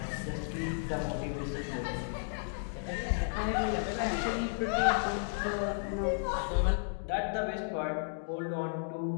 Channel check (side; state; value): right; silent; digital silence